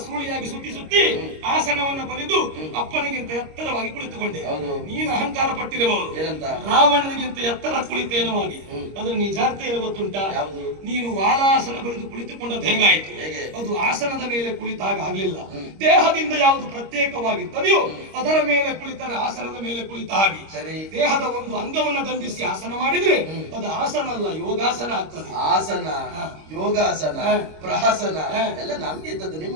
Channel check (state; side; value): late; left; 26 ms